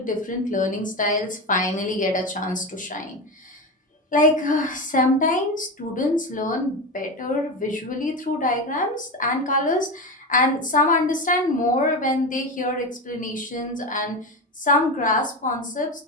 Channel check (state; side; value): normal; both; correlation 0.20